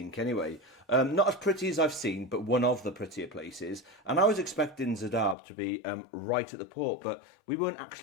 anyway. Not as pretty as I've seen, but one of the prettier places. And I was expecting Zadar to be right at the port, but we weren't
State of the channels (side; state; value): right; drops out; at 5.4 s